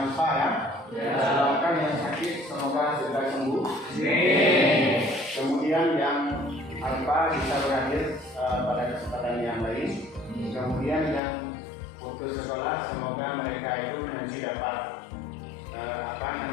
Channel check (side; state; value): right; drops out; at 11.2 s